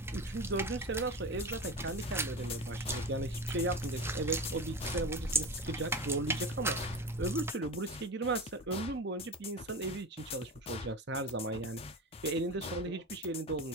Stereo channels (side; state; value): both; normal; correlation 0.27